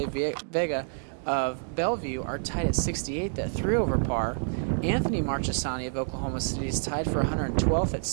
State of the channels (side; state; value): left; silent; digital silence